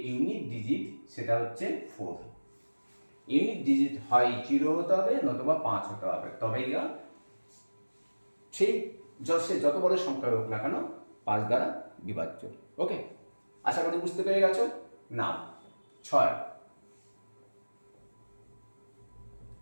ইউনিট ডিজিট সেটা হচ্ছে 4। ইউনিট ডিজিট হয় 0 হতে হবে নতুবা 5 হতে হবে, তবেই সেই সে যত বড় সংখ্যা হোক না কেন 5 দ্বারা বিভাজ্য। ওকে, আশা করি বুঝতে পেরে গেছো। না 6,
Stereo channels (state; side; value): inverted; both; correlation -1.00